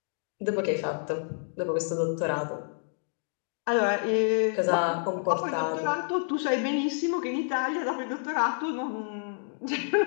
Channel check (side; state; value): right; silent; digital silence